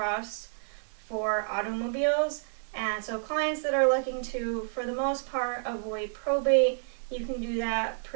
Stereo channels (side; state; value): left; silent; 58 dB below the other